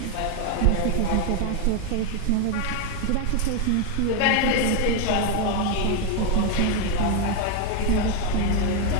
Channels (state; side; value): different; both; correlation 0.01